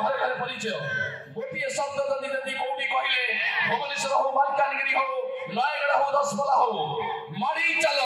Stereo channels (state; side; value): identical; both; correlation 1.00